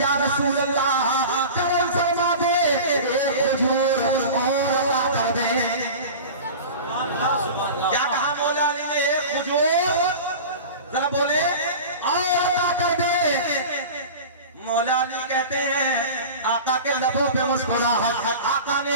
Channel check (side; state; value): both; inverted; correlation -0.34